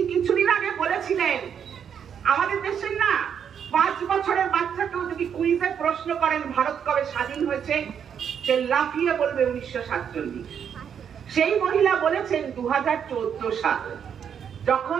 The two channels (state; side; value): quieter; left; 8.0 dB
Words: কিছুদিন আগে বলেছিলেন আমাদের দেশের না 5 বছরের বাচ্চাকেও যদি কুইজে প্রশ্ন করেন ভারত কবে স্বাধীন হয়েছে, সে লাফিয়ে বলবে 1947। সেই মহিলা বলেছেন 2014 সাল,